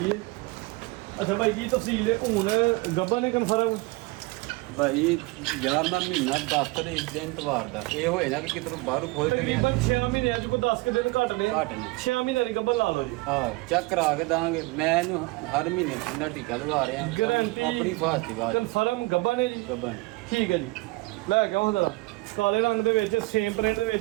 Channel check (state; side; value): quieter; left; 23.5 dB